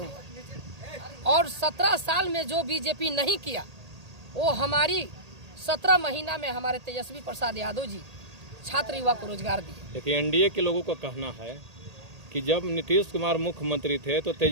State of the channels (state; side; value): late; left; 1.8 ms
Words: और 17 साल में जो बीजेपी नहीं किया वो हमारी 17 महीना में हमारे तेजस्वी प्रसाद यादव जी छात्र युवा को रोजगार दिए। देखिए, एनडीए के लोगों का कहना है कि जब नीतीश कुमार मुख्यमंत्री थे तो